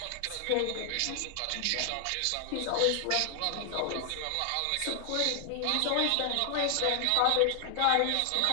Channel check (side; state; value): both; different; correlation 0.00